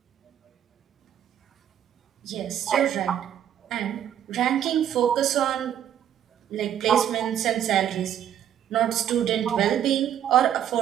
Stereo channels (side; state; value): left; quieter; 10.2 dB